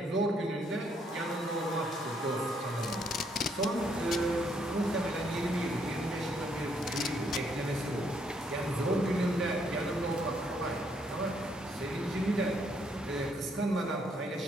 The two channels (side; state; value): both; normal; correlation 0.71